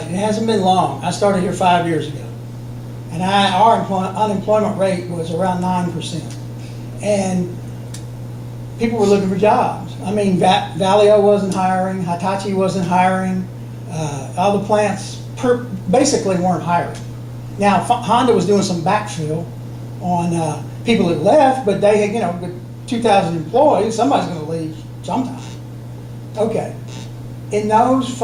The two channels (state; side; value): identical; both; correlation 1.00